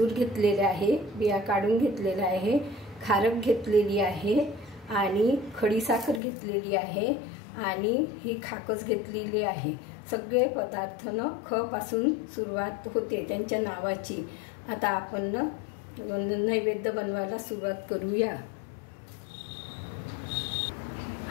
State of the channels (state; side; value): drops out; right; at 6.2 s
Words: घेतलेले आहे, बिया काढून घेतलेला आहे, खारक घेतलेली आहे आणि खडी साखर घेतलेली आहे आणि ही खाकस घेतलेली आहे। सगळे पदार्थ ख पासून सुरुवात होते त्यांच्या नावाची। आता आपण नैवेद्य बनवायला सुरुवात करूया।